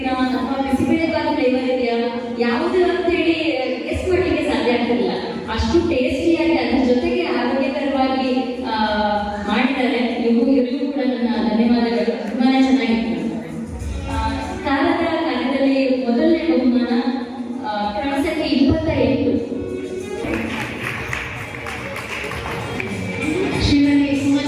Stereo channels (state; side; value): identical; both; correlation 1.00